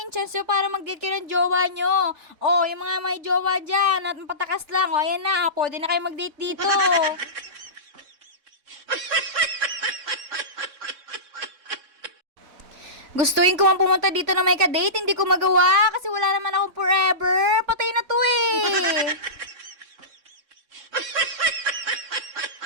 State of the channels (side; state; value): left; late; 3.6 ms